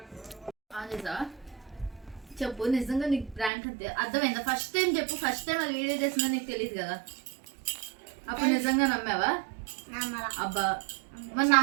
చేసా చెప్పు, నిజంగా నీకు ప్రాంక్ అంతే అర్థమైందా? ఫస్ట్ టైం చెప్పు, ఫస్ట్ టైం అది వీడియో చేసిందో నీకు తెలియదు కదా, అప్పుడు నిజంగా నమ్మావా? అబ్బా మరి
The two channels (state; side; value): drops out; left; at 3.5 s